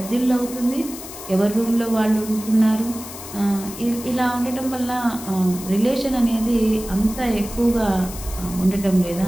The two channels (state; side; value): noise; left; hiss, 12 dB below the sound